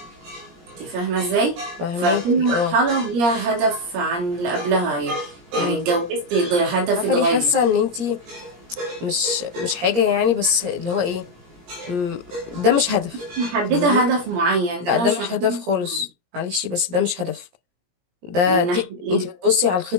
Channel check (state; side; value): late; left; 17 ms